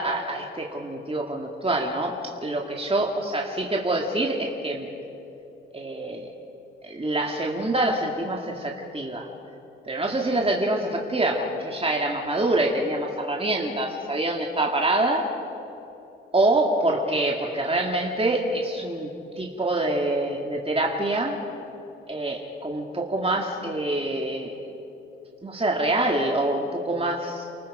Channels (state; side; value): normal; both; correlation 0.40